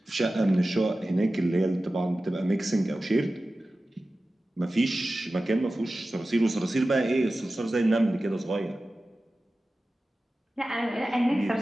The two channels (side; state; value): both; normal; correlation 0.95